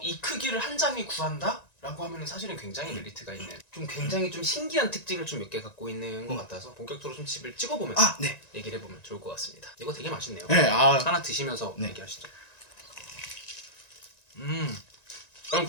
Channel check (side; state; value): right; late; 1.9 ms